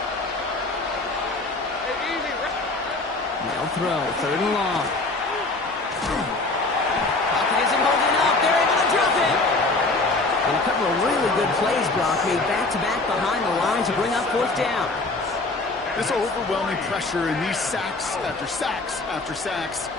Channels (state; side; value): quieter; right; 3.3 dB